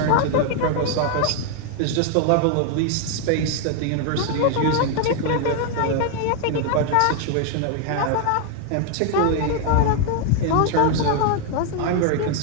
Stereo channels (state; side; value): different; both; correlation 0.00